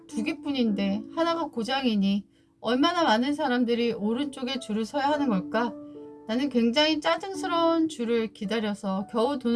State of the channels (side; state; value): both; identical; correlation 1.00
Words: 2개뿐인데 하나가 고장이니 얼마나 많은 사람들이 오른쪽에 줄을 서야 하는 걸까? 나는 굉장히 짜증스러운 줄을 기다려서 겨우